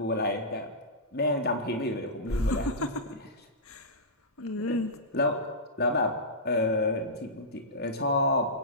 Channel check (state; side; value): normal; both; correlation -0.16